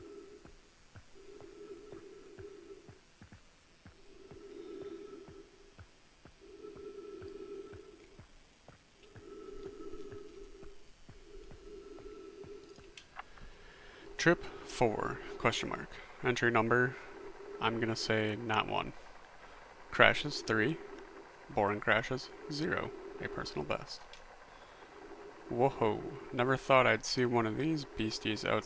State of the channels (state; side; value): identical; both; correlation 1.00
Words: Trip 4, question mark. Entry number, I'm gonna say not 1. Crashes 3. Boring crashes 0. A personal best. Whoa, never thought I'd see one of these beasties